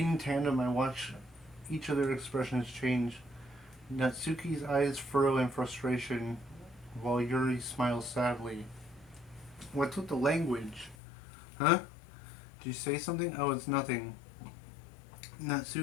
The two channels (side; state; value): right; drops out; at 11.0 s